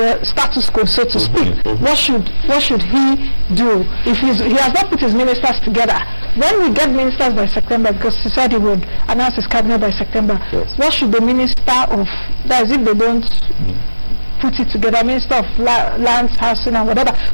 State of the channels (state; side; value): inverted; both; correlation -1.00